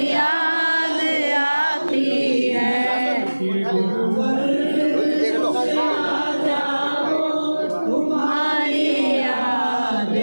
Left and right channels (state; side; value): inverted; both; correlation -1.00